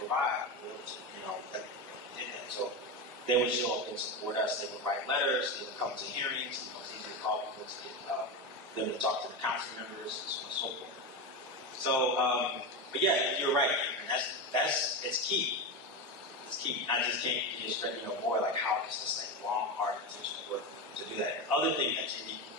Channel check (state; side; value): normal; both; correlation 0.17